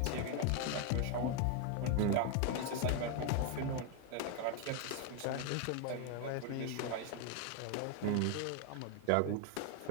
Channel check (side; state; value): both; different; correlation 0.01